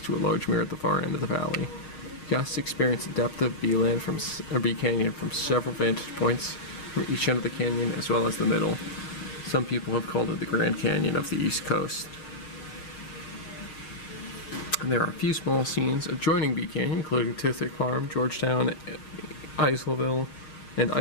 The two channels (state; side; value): late; right; 6.5 ms